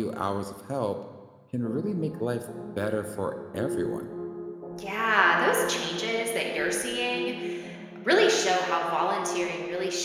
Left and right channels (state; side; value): identical; both; correlation 1.00